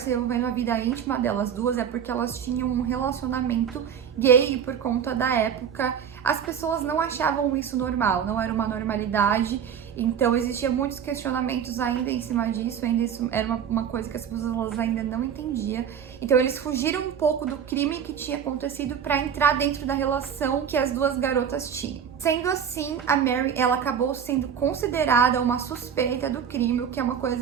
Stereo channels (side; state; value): left; quieter; 8.1 dB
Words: envolvendo a vida íntima delas duas é porque elas tinham um relacionamento gay, e por conta da época as pessoas não achavam isso normal, não era uma normalidade. Então existiam muitos questionamentos ainda em cima disso, ainda isso era uma coisa que as pessoas ainda não entendiam. Então eles fugiram um pouco do crime que tinha acontecido para entrar dentro da relação que as duas garotas tinham. Sendo assim, a Mary, ela acabou sendo considerada uma suspeita do crime, o que é uma